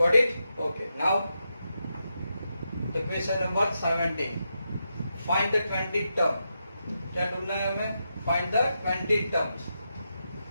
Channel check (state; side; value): inverted; both; correlation -0.86